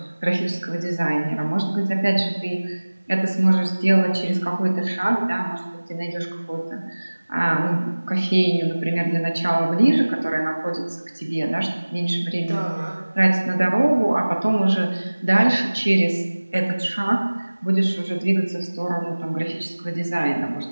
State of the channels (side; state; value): both; inverted; correlation -1.00